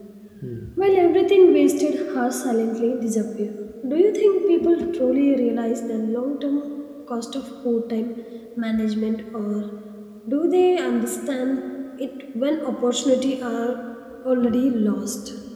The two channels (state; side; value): identical; both; correlation 1.00